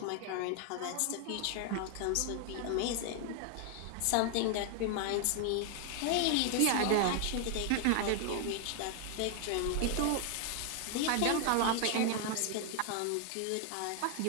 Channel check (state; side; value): different; both; correlation 0.00